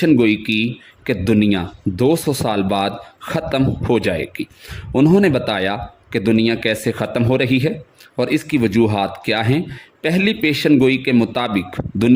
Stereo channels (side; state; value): both; identical; correlation 1.00